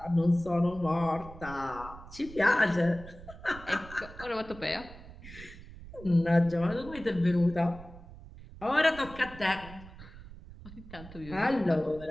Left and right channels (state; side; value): noise; right; rumble, 16 dB below the sound